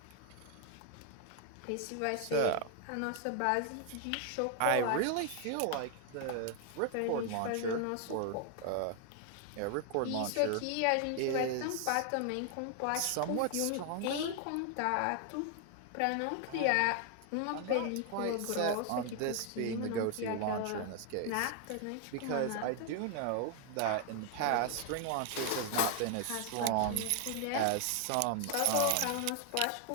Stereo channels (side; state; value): both; different; correlation 0.00